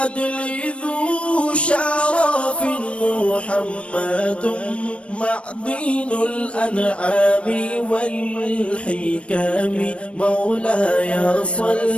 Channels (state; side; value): late; right; 0.061 ms